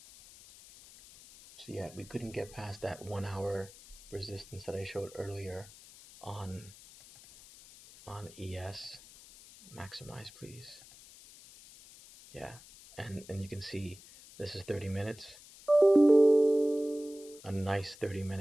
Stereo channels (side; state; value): left; noise; hiss, 20 dB below the sound